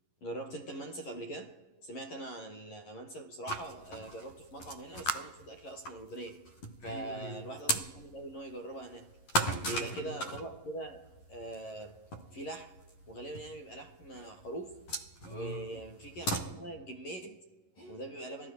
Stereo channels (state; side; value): late; right; 11 ms